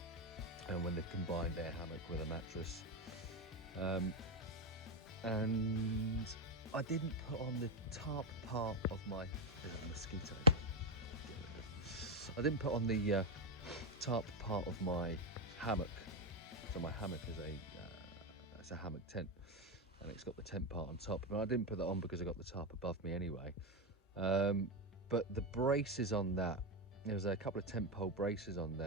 and when they've combined their hammock with a mattress. And I didn't put on the top part of my, there's a mosquito. I didn't put on the top part of my hammock. So my hammock is it's a hammock tent, and it's got the tent part on top. But I didn't put that on because I got the tarp above me anyway. But the braces on that, there was a couple of tent pole braces on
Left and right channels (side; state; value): both; normal; correlation 0.07